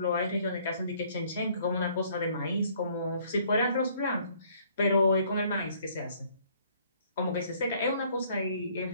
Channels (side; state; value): both; inverted; correlation -0.61